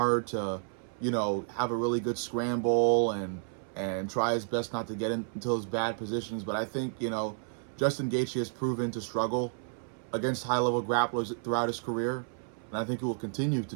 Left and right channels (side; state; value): left; silent; 57 dB below the other